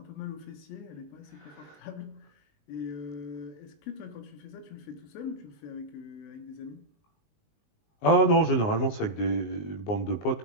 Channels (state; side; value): late; right; 19 ms